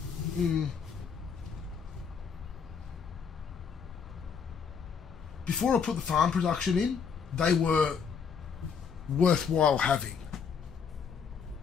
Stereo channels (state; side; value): quieter; right; 6.3 dB